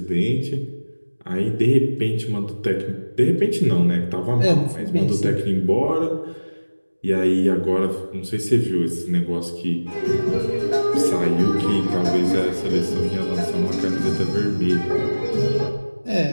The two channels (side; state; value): both; inverted; correlation -1.00